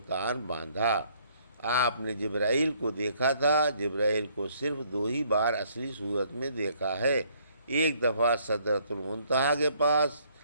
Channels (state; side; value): inverted; both; correlation -0.65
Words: باندھا۔ آپ نے جبرائیل کو دیکھا تھا۔ جبرائیل کو صرف 2 ہی بار اصلی صورت میں دیکھا ہے، ایک دفعہ سدرۃ المنتہا کے پاس